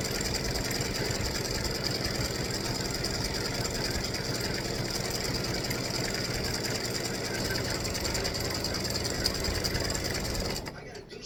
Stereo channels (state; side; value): identical; both; correlation 1.00